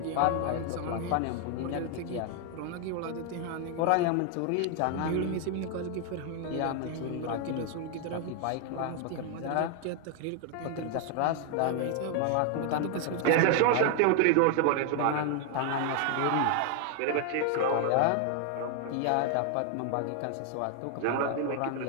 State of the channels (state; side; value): different; both; correlation 0.00